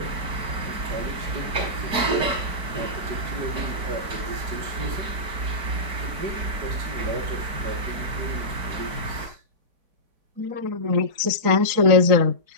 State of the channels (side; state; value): left; late; 4.6 ms